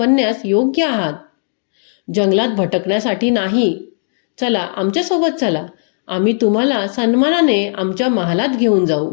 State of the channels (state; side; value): silent; right; digital silence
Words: योग्य आहात, जंगलात भटकण्यासाठी नाही. चला, आमच्यासोबत चला, आम्ही तुम्हाला सन्मानाने आमच्या महालात घेऊन जाऊ.